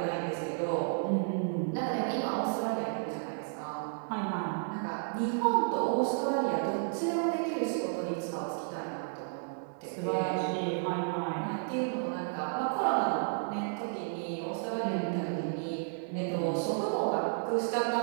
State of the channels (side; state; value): left; silent; digital silence